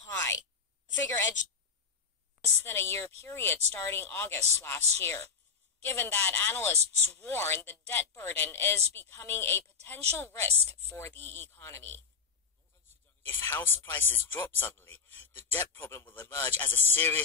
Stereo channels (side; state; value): right; quieter; 5.5 dB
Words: The figure edged less than a year period starting August last year. Given that analysts warn the debt burden is becoming a potential risk for the economy. If house prices drop suddenly, the debt problem will emerge as a